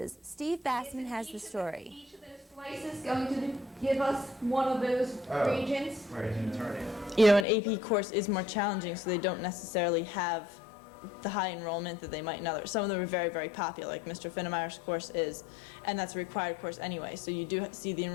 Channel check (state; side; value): drops out; right; at 7.5 s